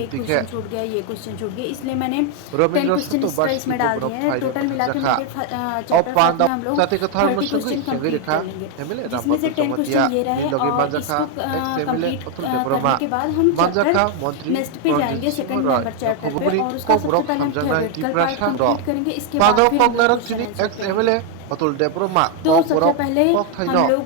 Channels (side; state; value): both; different; correlation 0.01